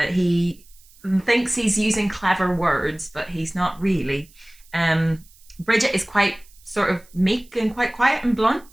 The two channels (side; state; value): right; noise; hiss, 27 dB below the sound